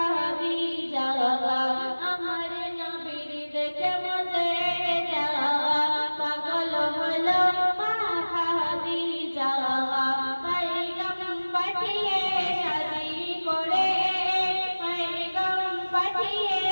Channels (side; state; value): both; inverted; correlation -1.00